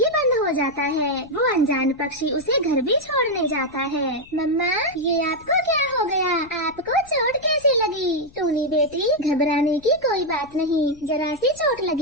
बंद हो जाता है। वो अनजान पक्षी उसे घर भी छोड़ने जाता है। मम्मा, ये आपको क्या हो गया? आपको चोट कैसे लगी? टूनी बेटी, घबराने की कोई बात नहीं, जरा सी चोट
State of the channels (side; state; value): left; noise; rumble, 24 dB below the sound